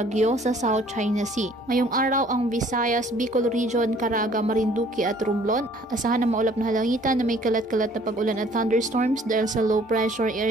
sa South China Sea. Ngayong araw ang Visayas, Bicol Region, Caraga, Marinduque at Romblon asahan na maulap na halangitan na may kalat-kalat na pag-ulan at thunderstorms dahil sa low pressure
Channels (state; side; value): normal; both; correlation 0.57